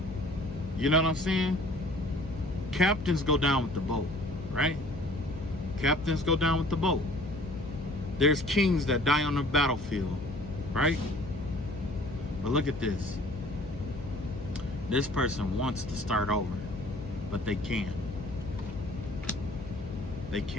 You know what I'm saying? Captains go down with the boat, right? Captains go down with the boat. There's kings that die on the battlefield, right? But look at this. This person wants to start over, but they can't. They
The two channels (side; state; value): left; noise; hum, 12 dB below the sound